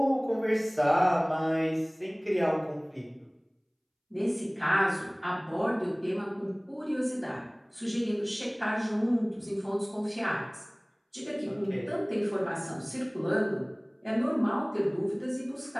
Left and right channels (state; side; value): identical; both; correlation 1.00